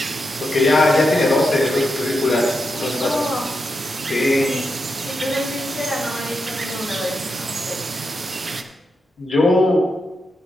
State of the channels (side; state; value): both; normal; correlation 0.86